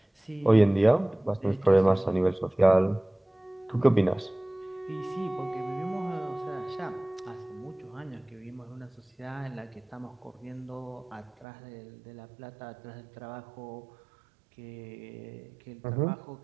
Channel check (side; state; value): left; drops out; at 11.5 s